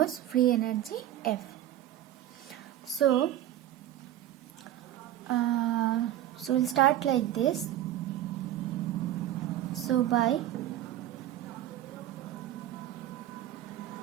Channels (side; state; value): left; quieter; 12.7 dB